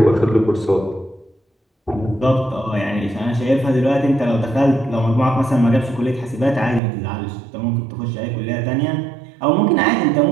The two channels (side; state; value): left; drops out; at 6.8 s